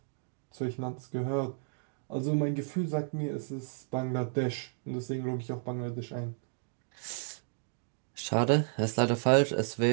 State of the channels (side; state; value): left; silent; digital silence